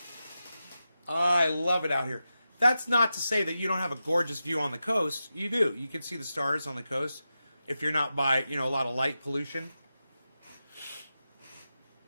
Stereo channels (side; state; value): both; inverted; correlation -0.91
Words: I love it out here. That's not to say that you don't have a gorgeous view on the coast. You do. You can see the stars on the coast if you're not by, you know, a lot of light pollution.